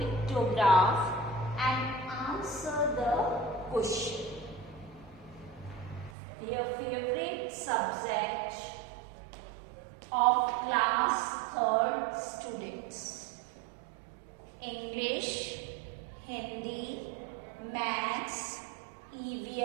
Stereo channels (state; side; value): drops out; left; at 6.1 s